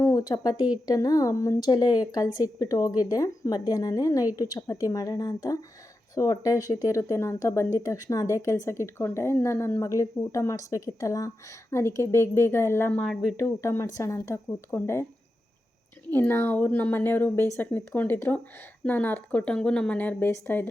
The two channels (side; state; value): both; normal; correlation 0.90